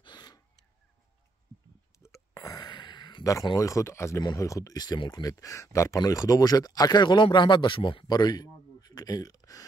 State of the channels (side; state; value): left; quieter; 3.2 dB